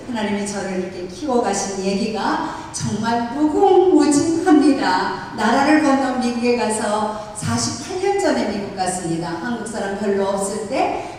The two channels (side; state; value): both; identical; correlation 1.00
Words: 하나님이 저를 이렇게 키워가신 얘기가 정말 무궁무진합니다. 나라를 건너 미국에 가서 48년 전에 미국 갔습니다. 한국 사람 별로 없을